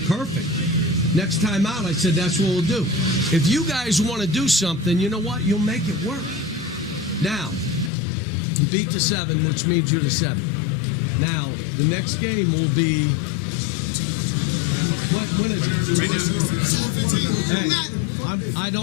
Perfect. Next time out, I said, that's what we'll do. If you guys want to do something, you know what? You'll make it work. Now, you beat the 7, which means you're the 7. Now, the next game will be, when is it? Right now. Hey, I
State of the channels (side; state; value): right; drops out; at 7.9 s